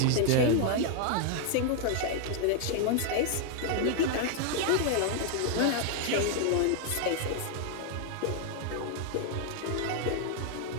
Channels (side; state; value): both; different; correlation 0.00